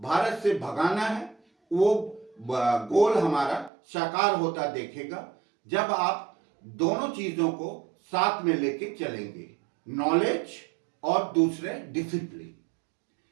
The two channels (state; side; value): drops out; left; at 3.7 s